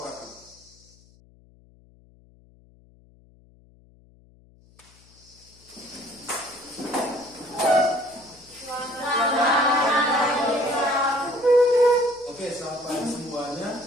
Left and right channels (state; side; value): noise; left; hum, 28 dB below the sound